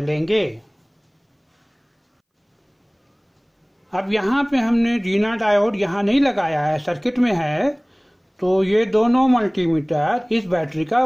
अब यहाँ पे हमने जीना डायोड यहाँ नहीं लगाया है, सर्किट में है, तो ये दोनों मल्टीमीटर इस बैटरी का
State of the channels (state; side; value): identical; both; correlation 1.00